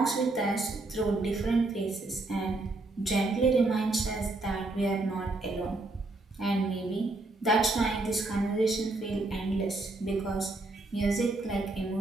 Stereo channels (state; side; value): quieter; left; 3.0 dB